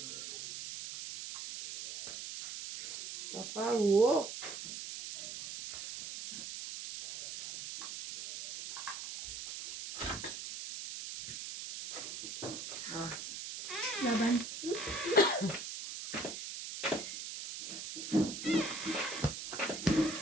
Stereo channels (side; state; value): right; noise; hiss, 7 dB below the sound